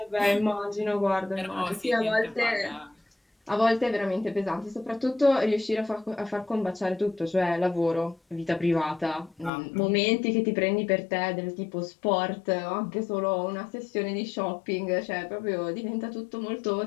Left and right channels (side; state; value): right; drops out; at 9.5 s